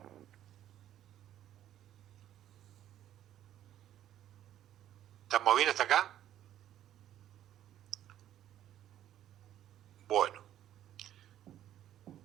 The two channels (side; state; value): left; quieter; 11.8 dB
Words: ¿Estamos bien hasta acá? Bueno.